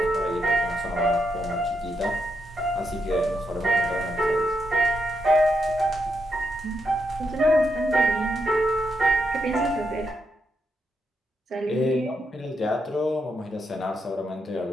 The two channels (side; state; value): both; normal; correlation 0.82